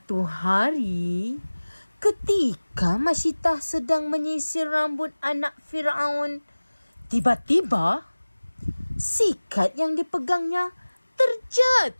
hari, ketika Masyitah sedang menyisir rambut anak Fir'aun, tiba-tiba sikat yang dipegangnya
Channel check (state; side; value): inverted; both; correlation -1.00